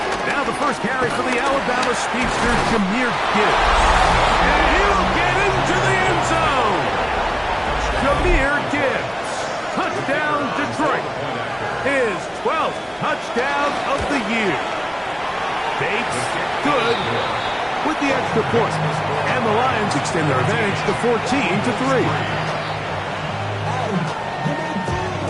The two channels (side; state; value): both; identical; correlation 1.00